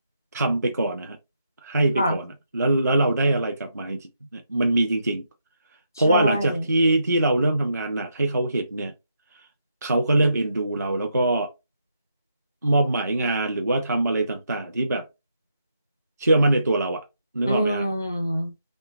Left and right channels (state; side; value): inverted; both; correlation -0.79